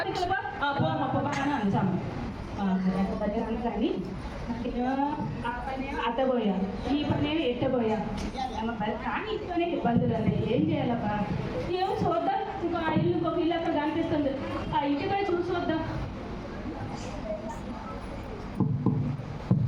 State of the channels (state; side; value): identical; both; correlation 1.00